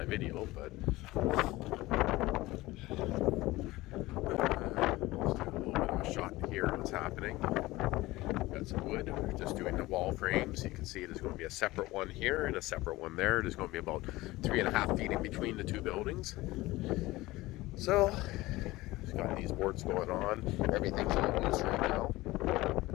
video, but let's do a little bit of a shot here of what's happening. Got some wood, we're just doing the wall frames. You can see there's going to be a separate one here and a separate one there. There's going to be about 3.5 feet in between the two buildings. So, got these boards going on. Everything's all loose right now.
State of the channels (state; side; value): quieter; right; 19.1 dB